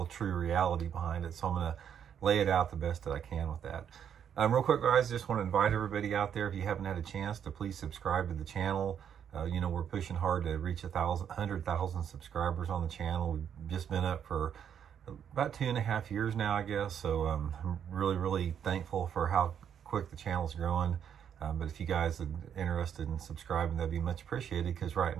true reality behind it. So I'm going to lay it out the best that I can with that. Real quick, guys, just want to invite everybody out there, if you haven't had a chance, to please subscribe to the channel. We're pushing hard to reach 100,000 subscribers on the channel. We've just been up for about 2.5 years now, I guess. So I'm really thankful for how quick the channel's growing. But if you guys are interested in subscribing, that'd be much appreciated, because right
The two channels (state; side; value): quieter; left; 8.6 dB